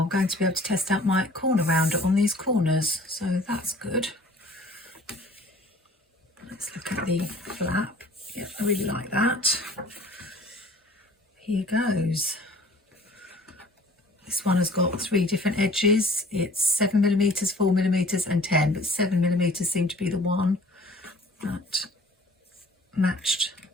I'm going to be able to test out my corner rounder on these corners, so that's good. Let's look at the flap. Yeah, I really like that. Here goes. This one has got 3 different edges. It's 7mm, 4mm and 10, but 7mm seemed to be the one that matched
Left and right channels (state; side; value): normal; both; correlation 0.50